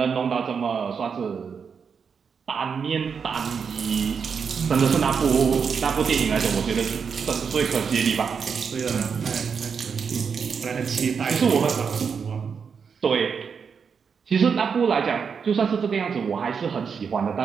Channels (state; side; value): quieter; left; 6.2 dB